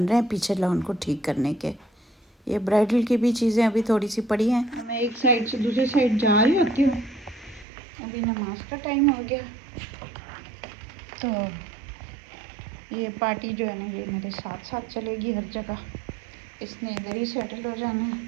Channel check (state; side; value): drops out; left; at 7.7 s